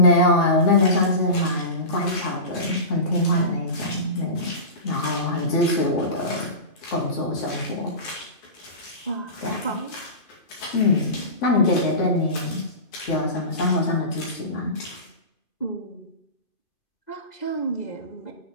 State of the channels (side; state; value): right; late; 2.5 ms